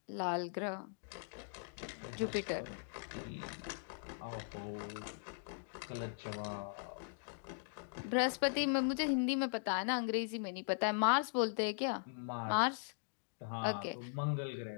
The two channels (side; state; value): right; silent; digital silence